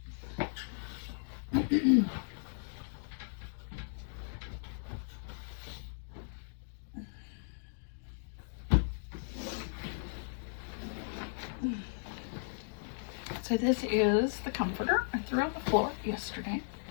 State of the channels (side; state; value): right; silent; digital silence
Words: So this is the comforter I threw on the floor yesterday